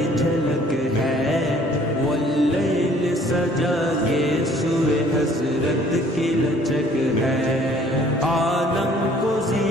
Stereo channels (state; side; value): normal; both; correlation 0.57